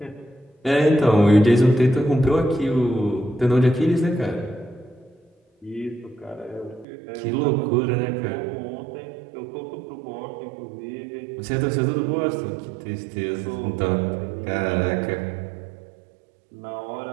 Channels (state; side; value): drops out; left; at 6.9 s